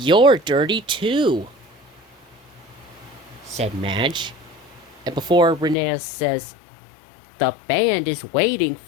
dirty too, said Madge. And before Rheneas says, The band is waiting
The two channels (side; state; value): right; drops out; at 5.8 s